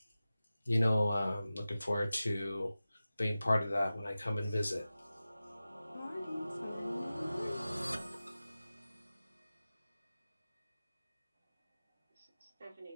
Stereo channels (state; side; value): inverted; both; correlation -0.95